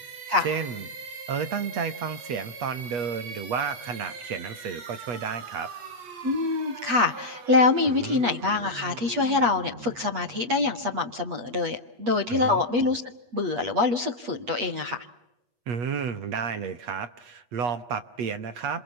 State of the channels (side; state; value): left; late; 8.3 ms